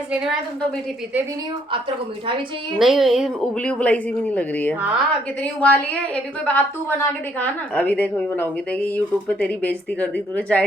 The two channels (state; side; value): normal; both; correlation 0.68